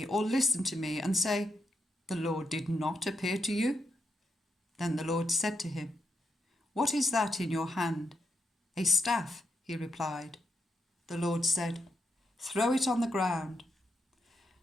or listen to me and say, 'The Lord did not appear to you'?" Then the Lord said to him, "What is that in your hand?" "A staff," he replied. The Lord said, "Throw it on the ground."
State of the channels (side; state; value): both; normal; correlation 0.81